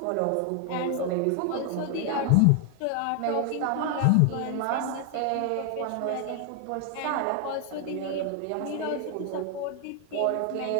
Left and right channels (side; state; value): both; different; correlation 0.00